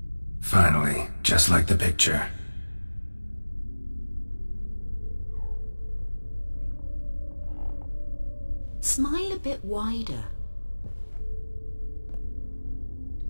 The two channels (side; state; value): both; inverted; correlation -1.00